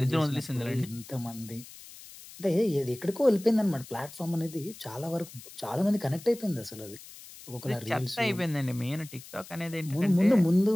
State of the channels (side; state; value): left; noise; hiss, 17 dB below the sound